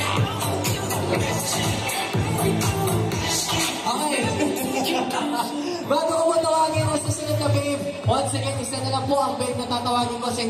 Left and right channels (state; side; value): identical; both; correlation 1.00